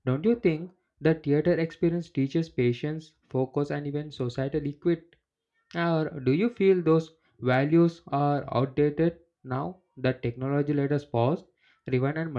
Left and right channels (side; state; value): both; identical; correlation 1.00